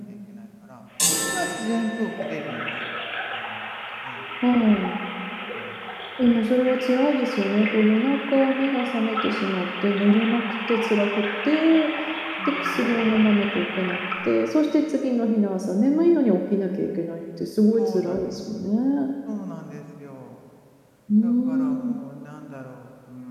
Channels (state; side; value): identical; both; correlation 1.00